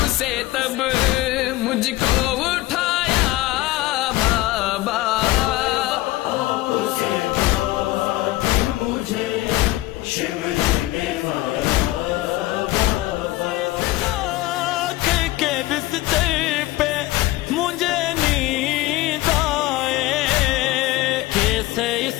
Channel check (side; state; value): right; quieter; 17.8 dB